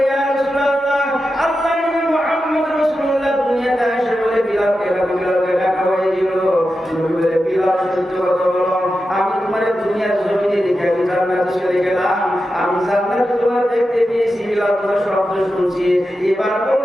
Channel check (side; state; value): both; normal; correlation 0.90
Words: ইয়া রাসূলুল্লাহ, আল্লাহ নবী মুহাম্মদ রাসূলুল্লাহ দুনিয়াতে এসে বলে, বিলালকে